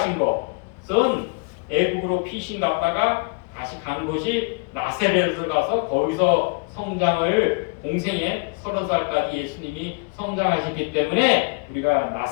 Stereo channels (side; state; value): right; quieter; 33.3 dB